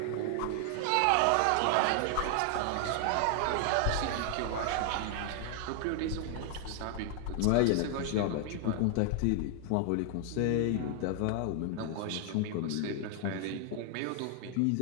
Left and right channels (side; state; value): both; different; correlation 0.00